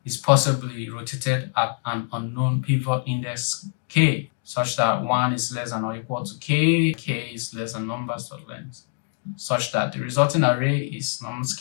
is possibly rotated at an unknown pivot index k, such that 1 is less than or equal to k is less than numbers.length, such that the resulting array is nums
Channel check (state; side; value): silent; right; digital silence